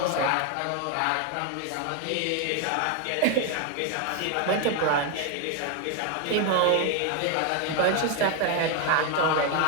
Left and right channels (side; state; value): both; different; correlation 0.01